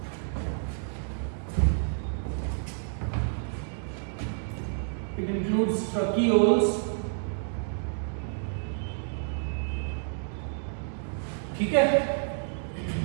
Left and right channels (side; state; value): left; silent; 58 dB below the other